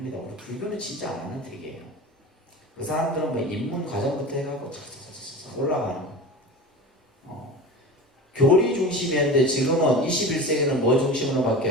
우리 불교는 진짜 안 하는 특이에요. 그 사람들은 뭐 입문 과정부터 해갖고 착착착착 올라가는 거. 교리 중심이었는데 지금은 21세기는 뭐 중심으로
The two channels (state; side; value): normal; both; correlation 0.32